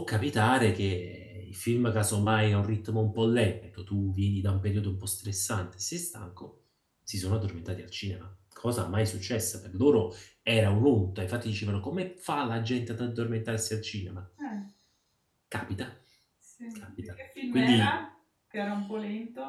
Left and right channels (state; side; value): identical; both; correlation 1.00